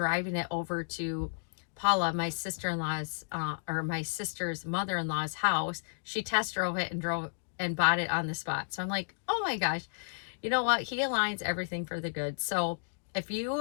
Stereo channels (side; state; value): right; silent; digital silence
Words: it over to Paula, my sister-in-law's, or my sister's mother-in-law's house. She test drove it and bought it on the spot. So I'm like, oh my gosh, you know what? He aligns everything for the good. So if you